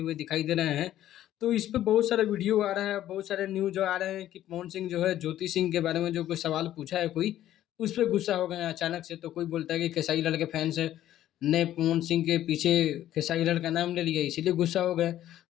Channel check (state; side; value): quieter; right; 12.7 dB